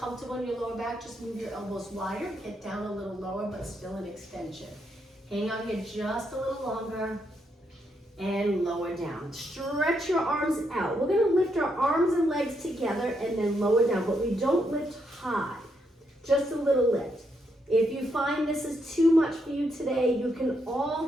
in your lower back, just move your elbows wider, get down a little lower, but still in extension. Hang on here just a little longer. And lower down. Stretch your arms out. We're gonna lift our arms and legs together and then lower down, but we don't lift high, just a little lift. If you find this is too much for you today, you can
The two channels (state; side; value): normal; both; correlation 0.79